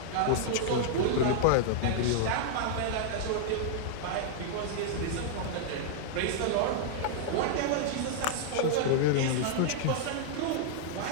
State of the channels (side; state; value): both; different; correlation -0.01